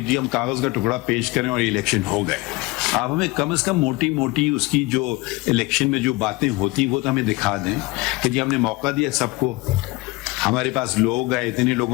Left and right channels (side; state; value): right; quieter; 22.2 dB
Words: جی ہم کاغذ کا ٹکڑا پیش کریں اور الیکشن ہو گئے. آپ ہمیں کم از کم موٹی موٹی اس کی جو الیکشن میں جو باتیں ہوتی وہ تو ہمیں دکھا دیں کہ جی ہم نے موقع دیا سب کو, ہمارے پاس لوگ آئے, اتنے